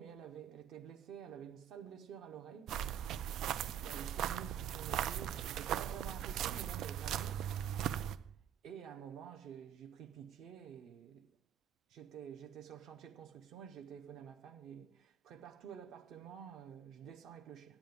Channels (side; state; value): left; quieter; 9.9 dB